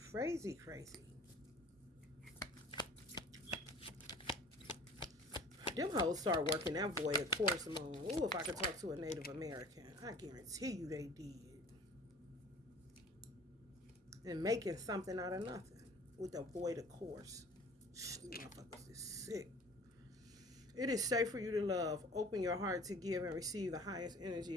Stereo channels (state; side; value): normal; both; correlation 0.46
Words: crazy, crazy. Them hoes start working that void of course moon. Ooh, if I could talk to a Native American, I guarantee you they did. And making something out of nothing with the void of course. Motherfuckers is sick. It is safe for you to love. Open your heart to give and receive the highest energy